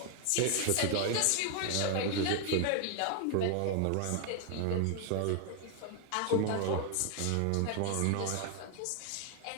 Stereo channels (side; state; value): both; different; correlation 0.00